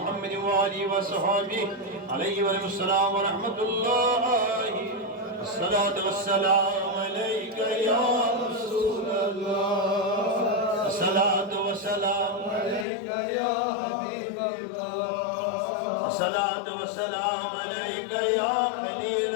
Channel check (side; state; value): right; drops out; at 12.9 s